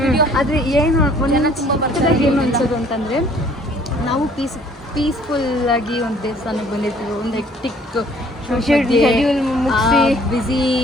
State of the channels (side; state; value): both; normal; correlation 0.57